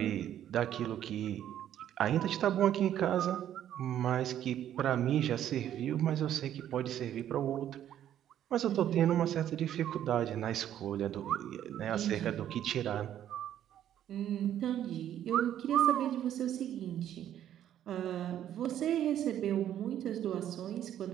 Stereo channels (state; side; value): quieter; left; 11.0 dB